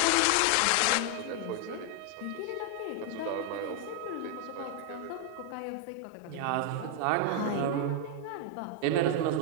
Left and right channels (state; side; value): different; both; correlation 0.00